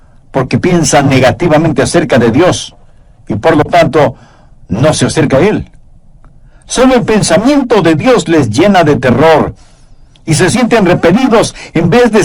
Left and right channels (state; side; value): identical; both; correlation 1.00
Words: porque piensa negativamente acerca de Dios y por lo tanto no se acerca a Él. Solo el pensamiento de Dios les llena de terror y se sienten repelidos en vez de